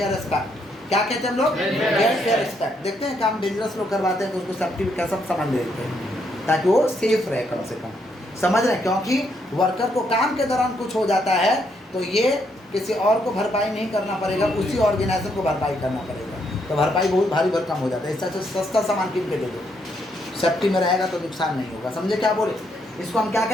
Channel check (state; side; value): normal; both; correlation 0.75